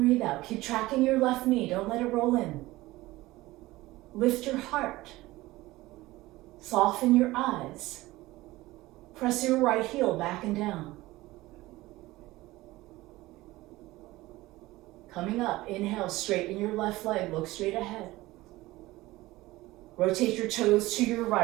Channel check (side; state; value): left; quieter; 18.6 dB